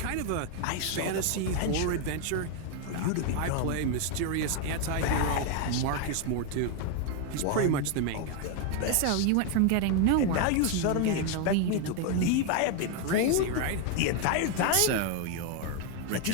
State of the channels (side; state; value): both; different; correlation 0.01